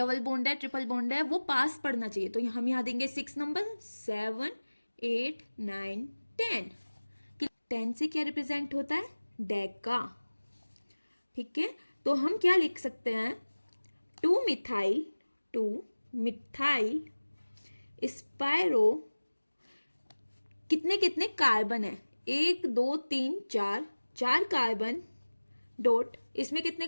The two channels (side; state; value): both; inverted; correlation -1.00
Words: बॉन्ड है ट्रिपल बॉन्ड है वो पास पड़ना चाहिए, तो हम यहाँ देंगे 6 नंबर 7 8 9 10। 10 से क्या रिप्रेजेंट होता है, डेका। ठीक है, तो हम क्या लिख सकते हैं, 2 मिथाइल स्पायरो, कितने कितने कार्बन है, 1 2 3 4 कार्बन डॉट, इसमें कितने